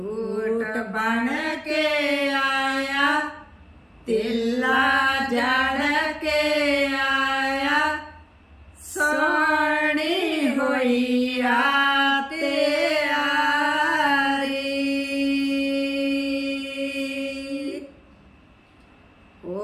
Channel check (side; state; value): both; identical; correlation 1.00